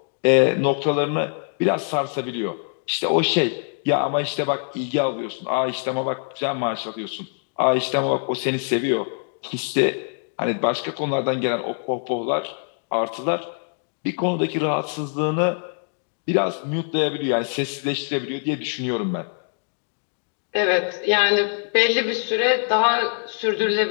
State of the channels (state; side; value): silent; right; 63 dB below the other